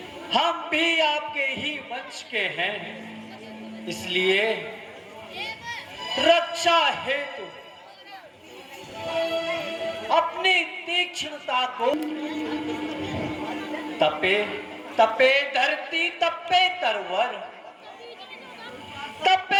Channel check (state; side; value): identical; both; correlation 1.00